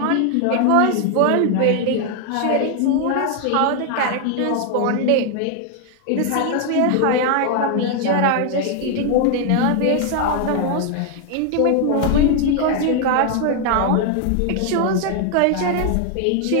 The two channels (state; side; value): different; both; correlation 0.00